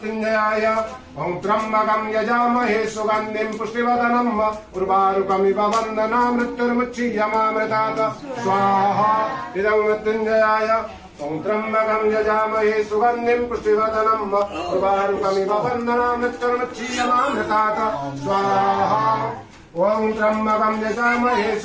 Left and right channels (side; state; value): both; identical; correlation 1.00